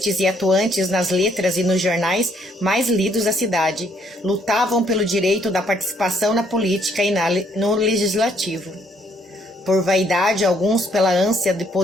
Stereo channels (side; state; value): both; normal; correlation 0.68